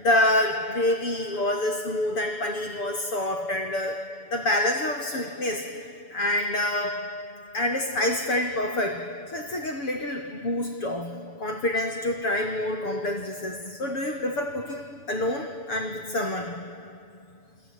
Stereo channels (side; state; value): right; late; 7.0 ms